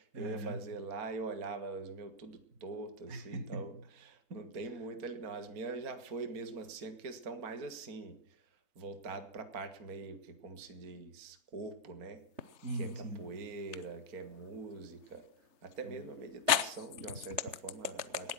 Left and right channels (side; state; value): left; late; 3.4 ms